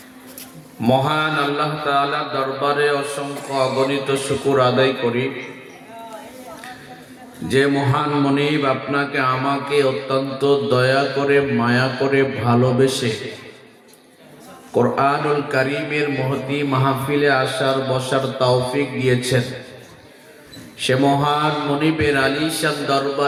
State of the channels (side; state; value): both; identical; correlation 1.00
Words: মহান আল্লাহ তাআলার দরবারে অসংখ্য অগণিত শুকর আদায় করি যে মহান মনিব আপনাকে আমাকে অত্যন্ত দয়া করে মায়া করে ভালোবেসে কোরআনুল কারীমের মহতি মাহফিলে আসার বসার তৌফিক দিয়েছেন। সে মহান মনিবের আলিশান